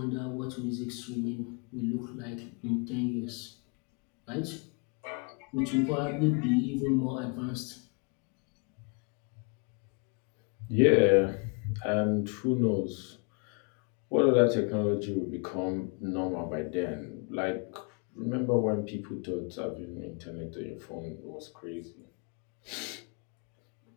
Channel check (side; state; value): right; quieter; 35.1 dB